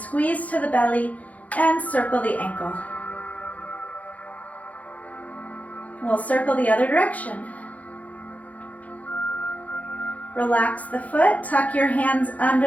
to the belly, and circle the ankle. We'll circle the other direction. Relax the foot, tuck your hands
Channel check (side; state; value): right; late; 0.071 ms